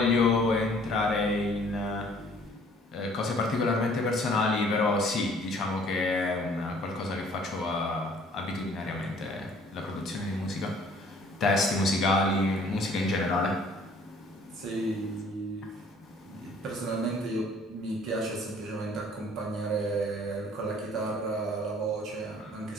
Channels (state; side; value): normal; both; correlation 0.57